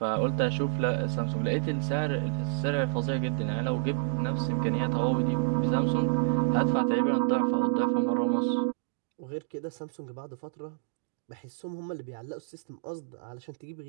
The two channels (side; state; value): left; silent; digital silence